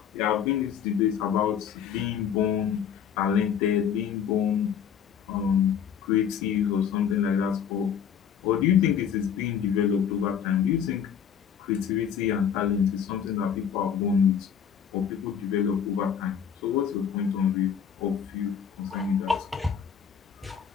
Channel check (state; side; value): quieter; right; 8.1 dB